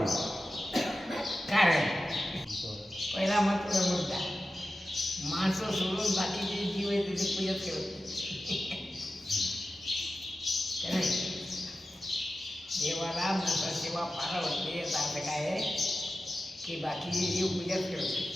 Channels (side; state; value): both; normal; correlation 0.94